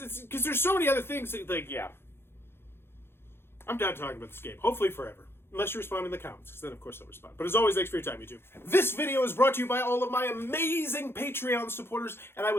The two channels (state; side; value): late; right; 0.11 ms